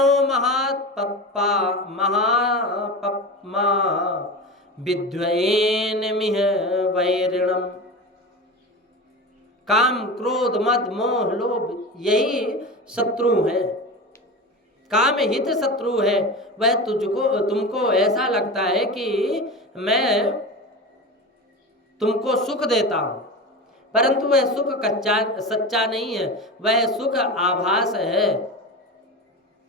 महापप्पा महापप्मा विद्वयेन मिह वैरिणम। काम क्रोध मद मोह लोभ यही शत्रु है, काम हित शत्रु है। वह तुमको ऐसा लगता है कि मैं तुमको सुख देता हूं, परंतु वह सुख सच्चा नहीं है, वह सुख आभास है।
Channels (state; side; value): normal; both; correlation 0.27